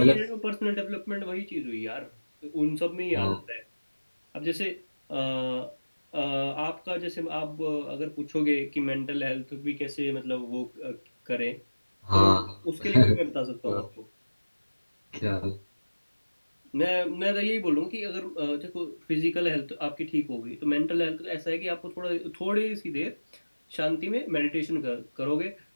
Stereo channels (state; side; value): inverted; both; correlation -1.00